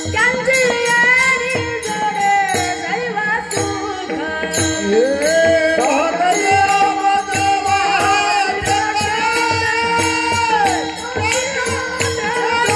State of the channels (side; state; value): both; identical; correlation 1.00